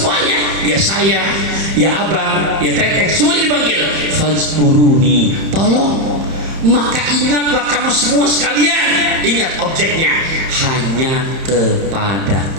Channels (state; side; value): late; left; 31 ms